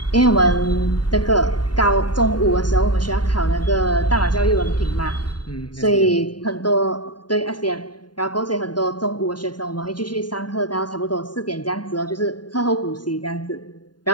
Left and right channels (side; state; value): right; late; 0.70 ms